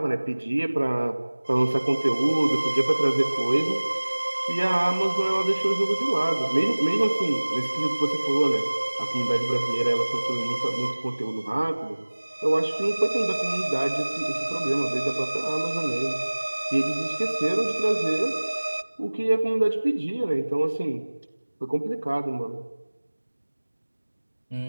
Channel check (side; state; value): both; inverted; correlation -1.00